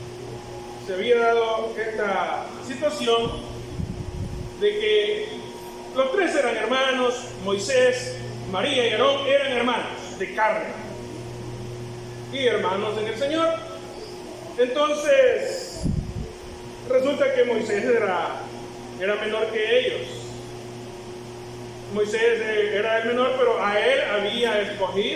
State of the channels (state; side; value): identical; both; correlation 1.00